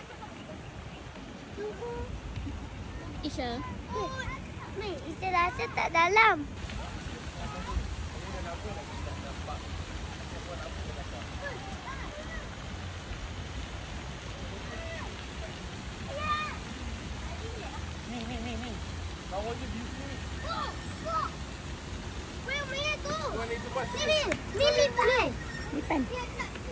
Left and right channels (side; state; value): both; identical; correlation 1.00